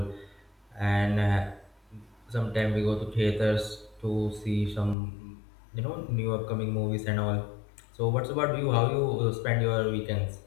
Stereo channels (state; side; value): drops out; right; at 5.0 s